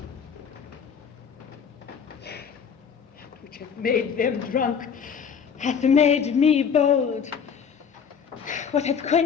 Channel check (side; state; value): right; quieter; 6.9 dB